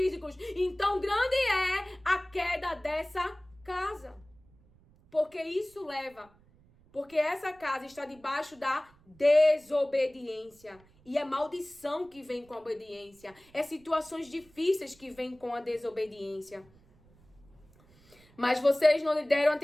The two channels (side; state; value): right; noise; rumble, 29 dB below the sound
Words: Então grande é a queda dessa casa. Porque essa casa está debaixo da desobediência. E é maldição que vem com a obediência. É situações difíceis que vêm com a desobediência. Mas vocês não lhe deram